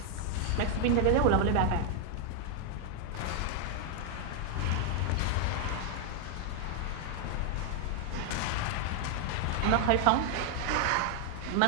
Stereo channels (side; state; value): both; different; correlation 0.00